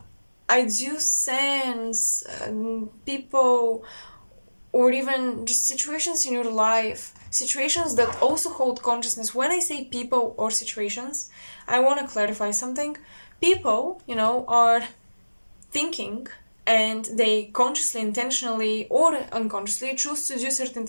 I do sense people or even just situations in your life, situations that also hold consciousness. When I say people or situations, I want to clarify something. People, are thinking, and they consciously, intentionally, or unconsciously choose to do certain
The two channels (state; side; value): inverted; both; correlation -1.00